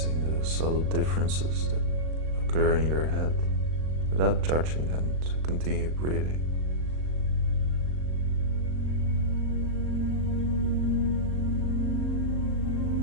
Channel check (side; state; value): left; late; 38 ms